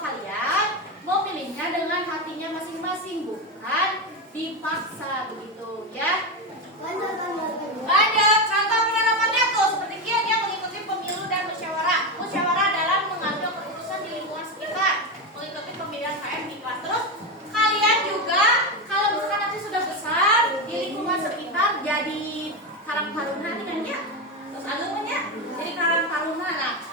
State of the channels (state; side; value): normal; both; correlation 0.13